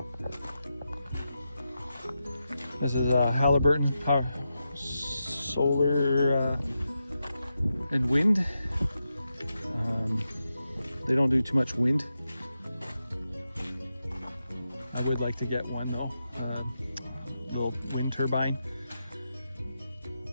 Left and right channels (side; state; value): both; inverted; correlation -0.88